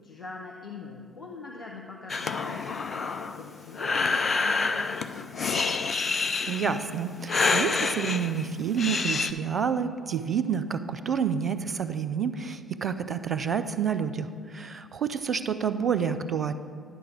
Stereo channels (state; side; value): normal; both; correlation 0.59